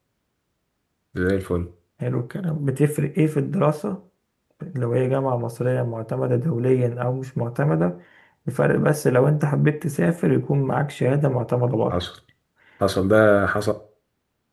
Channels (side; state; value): both; identical; correlation 1.00